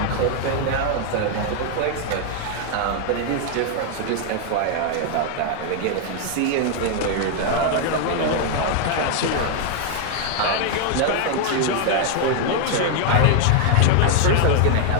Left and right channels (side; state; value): both; different; correlation 0.00